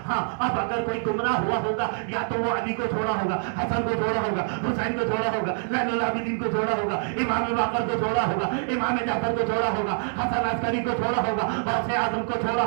ہاں اب اگر کوئی گمراہ ہوا ہوگا یا تو وہ علی کو چھوڑا ہوگا, حسن کو چھوڑا ہوگا, حسین کو چھوڑا ہوگا, زین العابدین کو چھوڑا ہوگا, امام باقر کو چھوڑا ہوگا, امام جعفر کو چھوڑا ہوگا, حسن عسکری کو چھوڑا ہوگا, غوث اعظم کو چھوڑا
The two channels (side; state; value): left; silent; 61 dB below the other